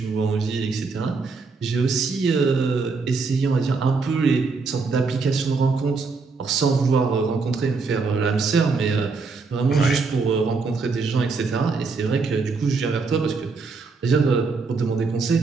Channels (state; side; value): quieter; left; 4.4 dB